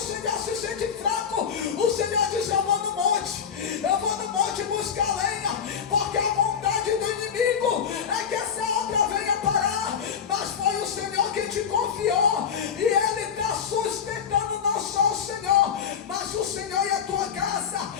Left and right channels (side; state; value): right; quieter; 7.3 dB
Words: se sente fraco. O Senhor diz: eu vou no monte. Eu vou no monte buscar lenha, porque a vontade do inimigo é que essa obra venha parar. Mas foi o Senhor que te confiou, e Ele está sustentando não só o Senhor, mas o Senhor e a tua casa.